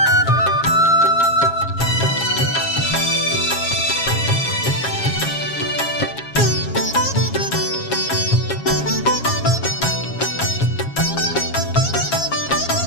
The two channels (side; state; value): right; late; 7.3 ms